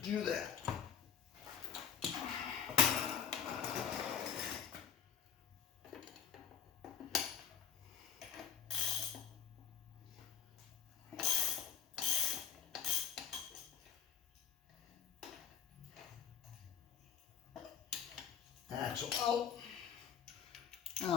that. Axle out. Now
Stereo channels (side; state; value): right; quieter; 8.7 dB